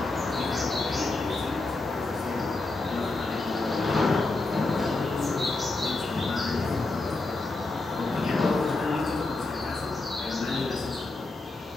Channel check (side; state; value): right; quieter; 3.2 dB